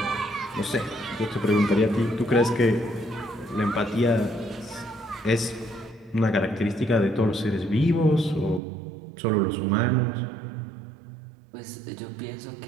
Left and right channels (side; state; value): left; drops out; at 8.6 s